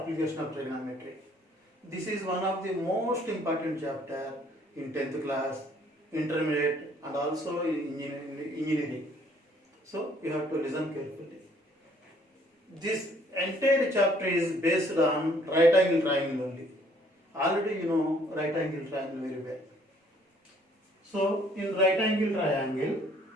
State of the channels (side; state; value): both; normal; correlation 0.61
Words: of trigonometry. This is one of the most important chapter in 10th class, intermediate and also in engineering. So you have to listen carefully. This entire chapter is based on right angle triangle only. Already you know right angle triangle very well. So in right angle triangle,